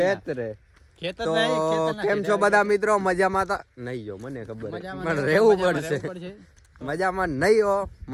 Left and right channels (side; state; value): both; identical; correlation 1.00